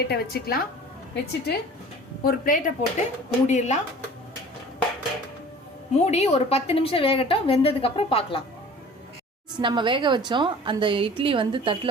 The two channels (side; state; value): both; normal; correlation 0.44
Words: வச்சுக்கலாம். வச்சுட்டு ஒரு பிளேட்டை போட்டு மூடிடலாம். மூடி ஒரு 10 நிமிஷம் வேகட்டும். வெந்ததுக்கப்புறம் பார்க்கலாம். நம்ம வேக வச்சோம் அந்த இட்லி தட்டில்